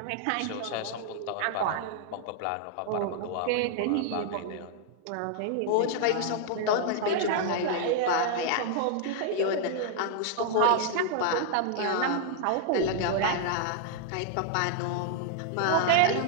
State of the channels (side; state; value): both; different; correlation 0.00